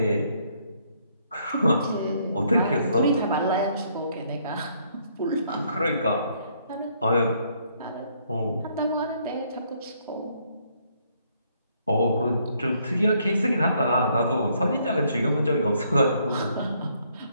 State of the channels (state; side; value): inverted; both; correlation -0.69